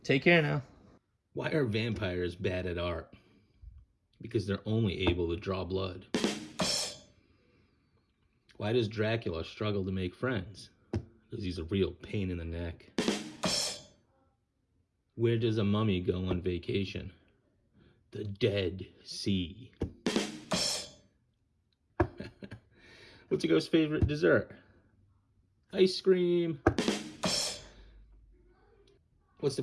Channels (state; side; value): identical; both; correlation 1.00